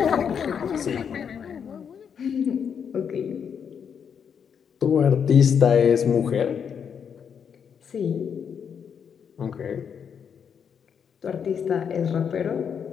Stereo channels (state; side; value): quieter; right; 7.3 dB